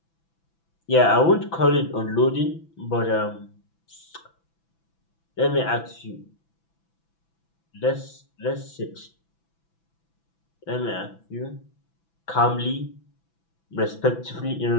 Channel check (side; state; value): right; late; 6.0 ms